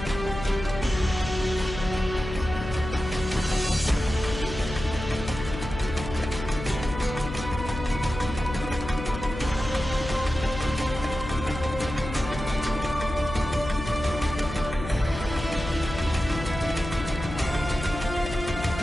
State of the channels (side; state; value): left; noise; hum, 8 dB below the sound